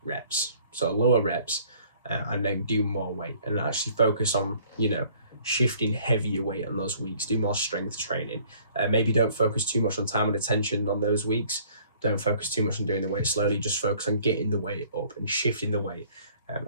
reps, so lower reps, and then do more weight, and actually focus on shifting heavier weight on those weeks. Do more strength training. Maybe don't focus too much on time and attention on those weeks. Don't focus too much on doing the weight slowly. Just focus on getting the weight up and shifting the weight,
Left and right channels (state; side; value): inverted; both; correlation -0.56